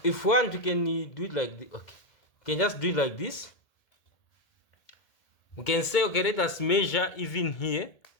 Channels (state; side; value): late; right; 1.8 ms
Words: if we want, we can do it like this. Okay, we can just do it like this. We can say, okay, let us measure even here,